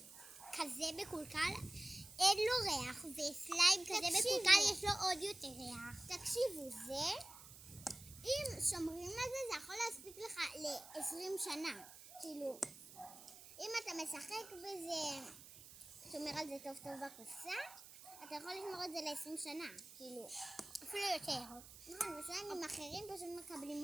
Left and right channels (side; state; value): right; noise; hiss, 17 dB below the sound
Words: כזה מקולקל אין לו ריח, וסליים כזה תקשיבו. מקולקל יש לו עוד יותר ריח. תקשיבו, זה, אם שומרים על זה, זה יכול להספיק לך ל-20 שנה. כאילו, אם אתה משחק בזה, שומר על זה טוב טוב בקופסה, אתה יכול לשמור את זה ל-20 שנה. כאילו, אפילו יותר. נכון, וסליימים אחרים פשוט